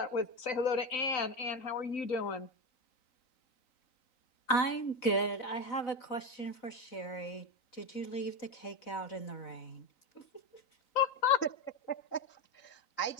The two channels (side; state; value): right; late; 3.9 ms